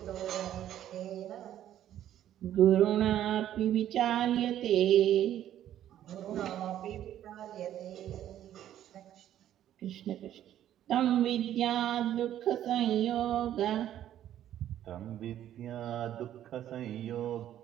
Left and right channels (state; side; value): quieter; left; 11.6 dB